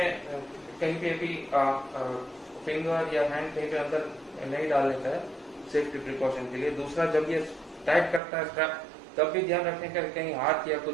कहीं पे भी फिंगर या हैंड कहीं पे अंदर नहीं डालने का है सेफ्टी प्रिकॉशन के लिए। दूसरा, जब ये टाइट करता है स्ट्रैप, तब भी ध्यान रखने का कहीं हाथ या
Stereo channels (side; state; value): left; drops out; at 8.2 s